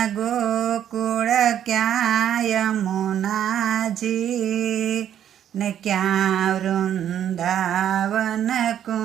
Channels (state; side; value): quieter; left; 10.1 dB